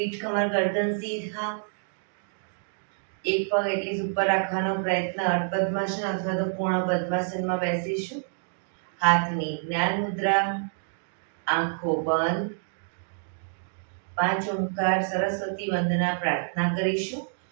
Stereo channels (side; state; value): left; silent; digital silence